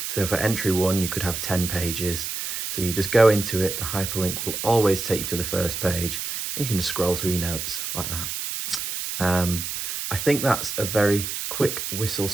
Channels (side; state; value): right; noise; hiss, 4 dB below the sound